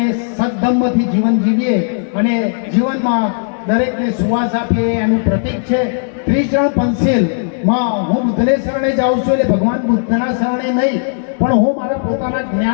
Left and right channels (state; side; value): silent; right; digital silence